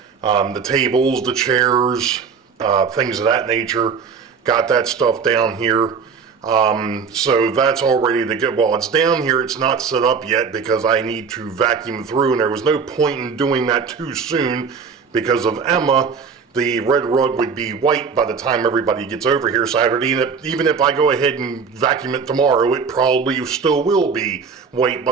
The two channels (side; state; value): left; quieter; 5.8 dB